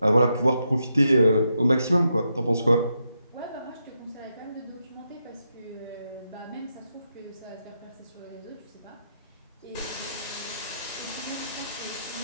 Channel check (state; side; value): inverted; both; correlation -0.83